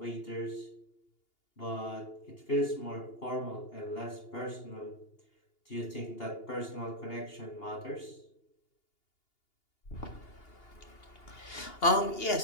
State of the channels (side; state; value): right; late; 2.8 ms